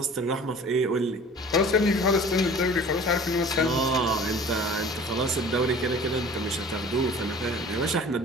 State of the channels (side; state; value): both; normal; correlation 0.45